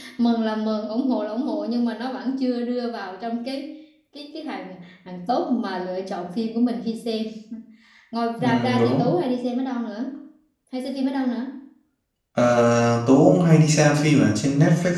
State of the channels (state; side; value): identical; both; correlation 1.00